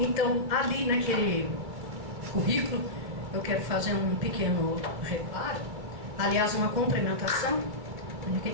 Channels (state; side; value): late; left; 2.3 ms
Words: ali naquele currículo eu quero fazer um pequeno reparo, aliás uma complementação. O que a